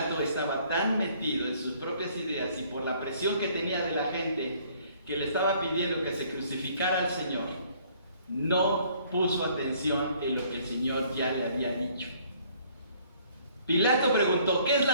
estaba tan metido en sus propias ideas y por la presión que tenía de la gente que le estaba pidiendo que se crucificara al Señor, no puso atención en lo que el Señor ya le había dicho. Pilato preguntó, ¿qué es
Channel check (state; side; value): inverted; both; correlation -0.60